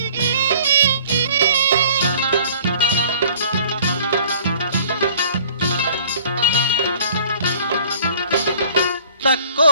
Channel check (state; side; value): inverted; both; correlation -0.52